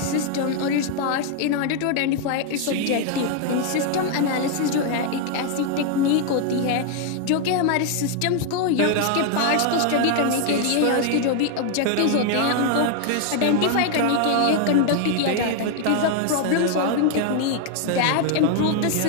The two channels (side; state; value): both; different; correlation 0.00